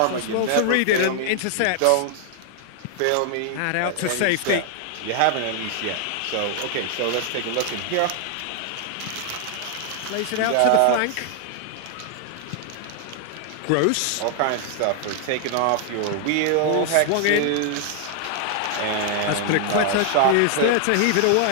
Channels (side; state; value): both; different; correlation 0.00